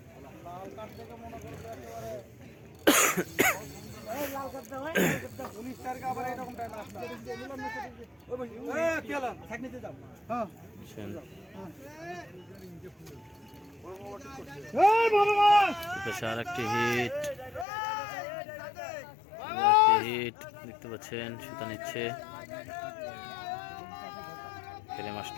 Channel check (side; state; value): right; drops out; at 17.7 s